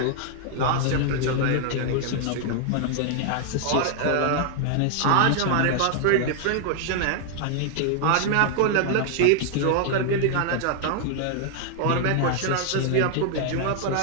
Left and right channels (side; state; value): both; different; correlation 0.00